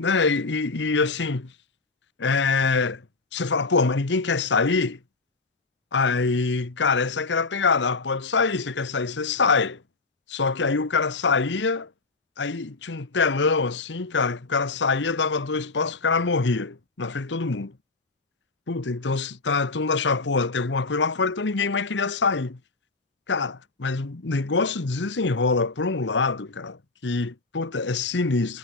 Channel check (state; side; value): quieter; right; 3.9 dB